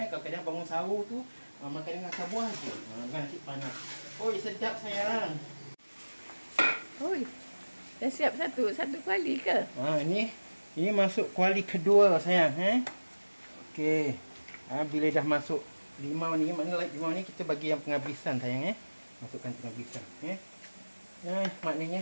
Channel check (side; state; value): both; inverted; correlation -1.00